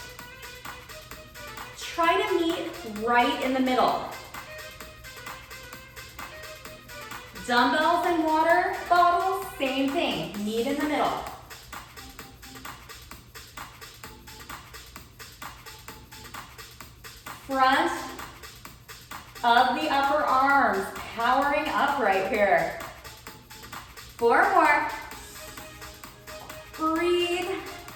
Try to meet right in the middle. Dumbbells and water bottles, same thing. Meet in the middle. Front of the upper arms, powering up right here. 4 more. Breathe.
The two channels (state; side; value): identical; both; correlation 1.00